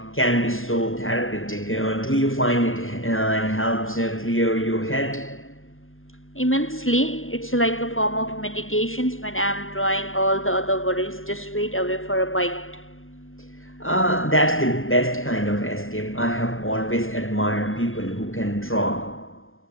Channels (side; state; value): right; late; 0.60 ms